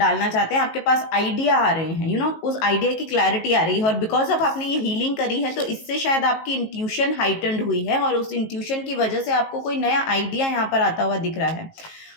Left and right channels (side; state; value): right; late; 19 ms